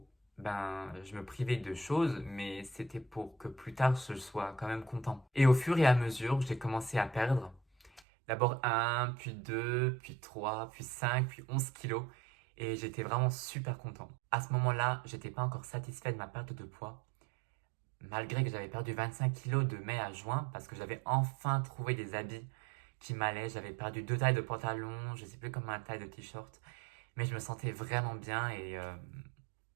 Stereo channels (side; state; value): left; drops out; at 8.0 s